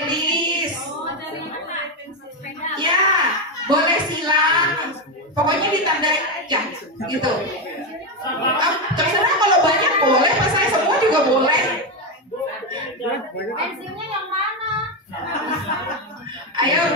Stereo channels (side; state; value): both; normal; correlation 0.09